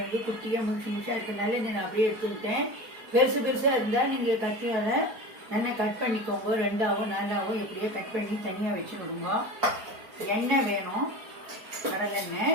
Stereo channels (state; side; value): late; left; 4.4 ms